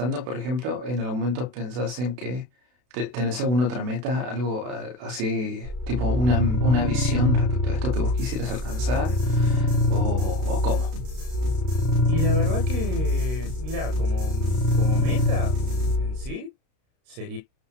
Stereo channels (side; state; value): left; late; 32 ms